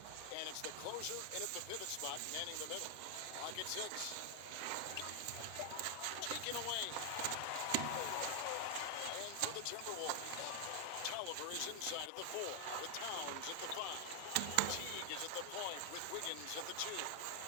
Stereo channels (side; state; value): both; different; correlation 0.00